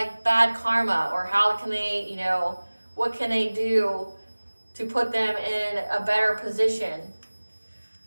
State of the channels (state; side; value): inverted; both; correlation -1.00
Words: bad karma, or how can they, what can they do to put them in a better position?